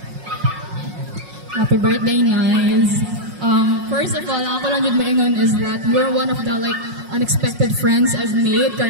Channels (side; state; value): left; late; 5.5 ms